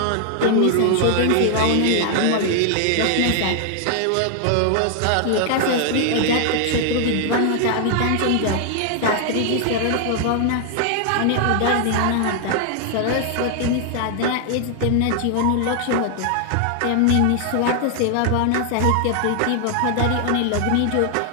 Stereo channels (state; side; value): different; both; correlation 0.00